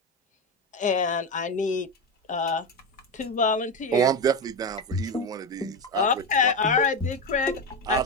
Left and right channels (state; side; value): normal; both; correlation 0.16